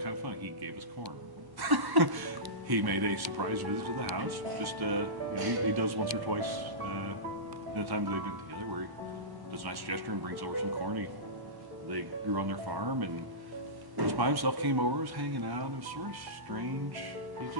of fun. He gave us corn. He made a surprise visit to the house. Just, he does once or twice the times they've been together where he does a nice gesture and brings over some corn they grew on their farm, and just by himself came over, was hanging out. It was sort of strange. He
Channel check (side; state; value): left; late; 1.1 ms